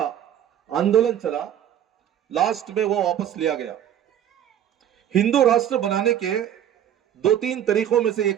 آندولن چلا, لاسٹ میں وہ واپس لیا گیا. ہندو راشٹر بنانے کے 2-3 طریقوں میں سے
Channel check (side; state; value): left; quieter; 10.3 dB